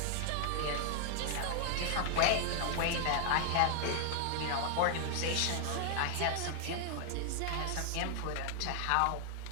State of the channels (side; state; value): both; different; correlation 0.00